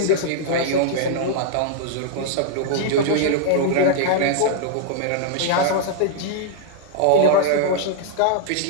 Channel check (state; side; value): different; both; correlation -0.01